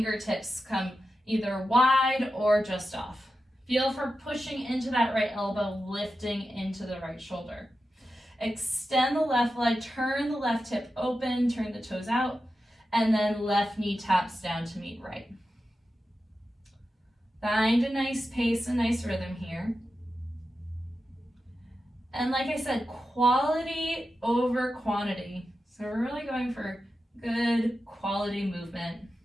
come either wide or just off. Feel for pushing into that right elbow, lifting into the right shoulder. Extend the left leg, turn the left hip open, turn the toes out, and then left knee taps down to meet right. Find a nice pace, a nice rhythm here. And like I said, quality over quantity. So we're really going for good quality movement.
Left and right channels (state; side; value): normal; both; correlation 0.91